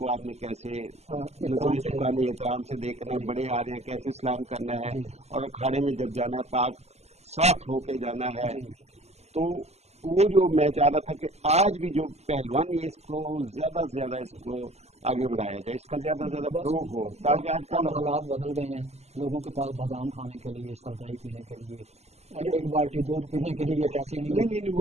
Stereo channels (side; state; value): left; late; 0.31 ms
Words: آپ نے کیسے نظریں جھکانی, احترام سے دیکھنا ہے. بڑے آ رہے ہیں کیسے سلام کرنا ہے, اور اکھاڑے میں جب جانا ہے پاک صاف ہو کے جانا ہے. تو وہ جو میں چاہ رہا تھا کہ آج بھی جو پہلوانی ہے اس کو زیادہ سے زیادہ اس کو آگے بڑھایا جائے, اس کا زیادہ زیادہ فروغ ہو, تاکہ آج کل حالات بدل گئے ہیں. لوگوں کے پاس بادام کھانے کے لیے, سردائی پینے کے لیے, 1 بالٹی دودھ پینے کے لیے پیسے نہیں ہیں.